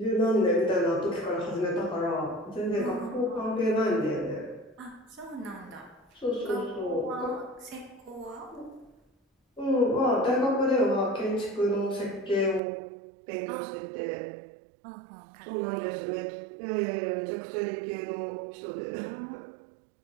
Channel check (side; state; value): left; drops out; at 12.6 s